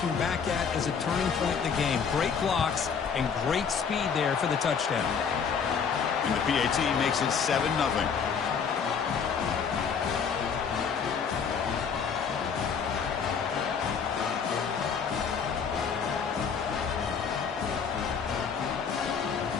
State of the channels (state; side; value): quieter; right; 6.4 dB